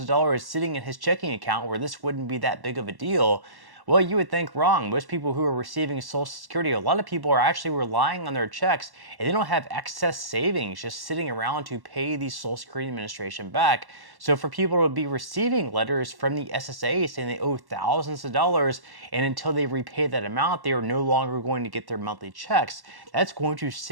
dollars sitting in his checking account where this wouldn't be that big of a deal, well, you would think wrong. Most people who are receiving Social Security, a lot of people are actually relying on their checks and they don't have excess savings just sitting around to pay the Social Security Administration back. So for people to be receiving letters from the SSA saying they owe thousands of dollars and until they repay that amount, they are no longer going to get their monthly checks, that's going to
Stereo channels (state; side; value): late; left; 1.1 ms